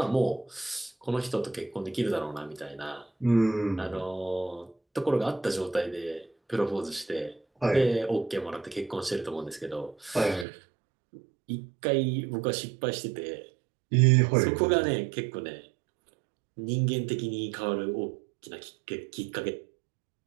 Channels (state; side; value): drops out; left; at 10.5 s